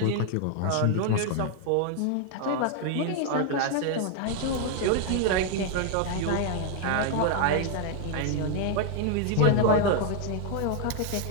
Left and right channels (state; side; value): different; both; correlation 0.01